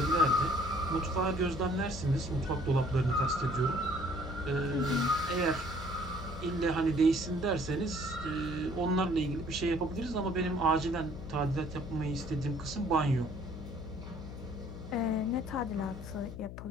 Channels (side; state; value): left; noise; hum, 10 dB below the sound